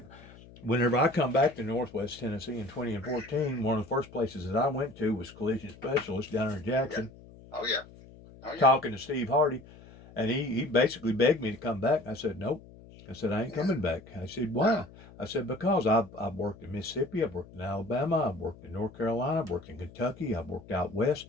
whenever I come back to Northwest Tennessee in 2014, one of the first places that I went to was Collision Specialist down in Yeah. Jackson, Oh yeah. Oh yeah. talking to Steve Hardy, and he basically begged me to come back. I said, nope. I said, I ain't Yeah. coming back. I said, No. why? I said, because I've worked in Mississippi, I've worked in Alabama, I've worked in North Carolina, I've worked in Kentucky, I've worked out west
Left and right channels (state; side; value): noise; left; hum, 20 dB below the sound